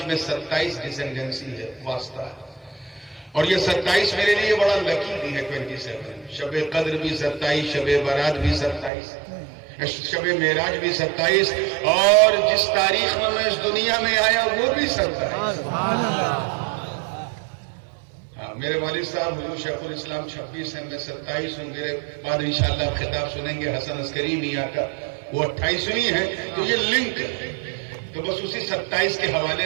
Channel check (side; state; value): left; drops out; at 8.9 s